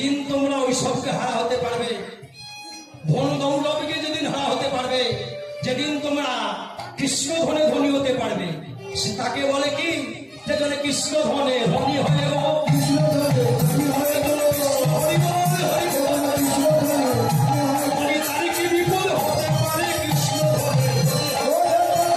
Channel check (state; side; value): identical; both; correlation 1.00